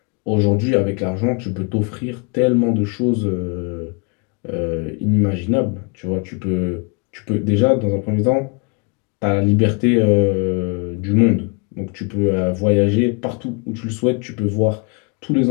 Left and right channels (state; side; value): quieter; right; 32.9 dB